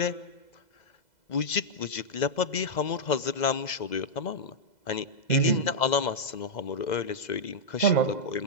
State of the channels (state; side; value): late; right; 2.0 ms